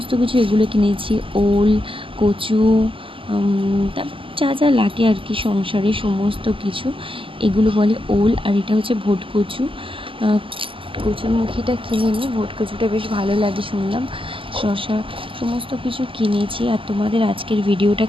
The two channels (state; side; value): late; left; 0.25 ms